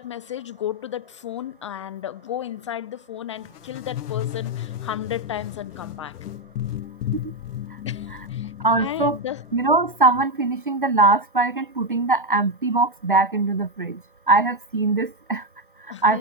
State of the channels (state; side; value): normal; both; correlation 0.07